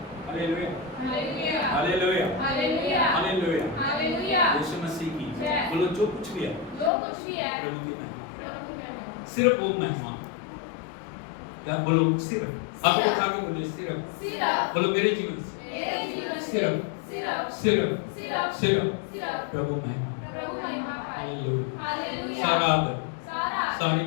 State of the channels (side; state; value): right; drops out; at 6.9 s